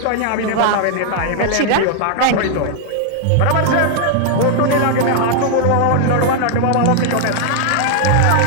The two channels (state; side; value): different; both; correlation 0.00